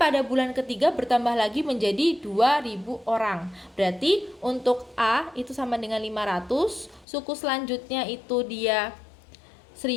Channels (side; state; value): right; drops out; at 7.1 s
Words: bulan ketiga bertambah lagi menjadi 2.000 orang. Berarti untuk A itu sama dengan 500, suku selanjutnya itu dia